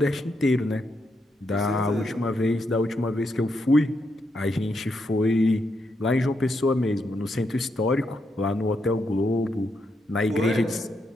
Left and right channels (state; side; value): normal; both; correlation 0.81